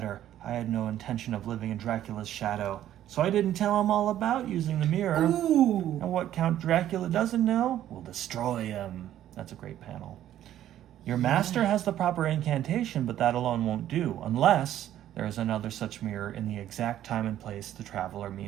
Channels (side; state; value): left; quieter; 12.0 dB